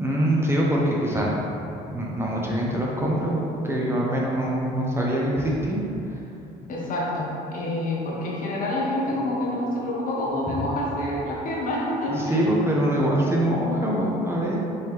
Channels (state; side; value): normal; both; correlation 0.55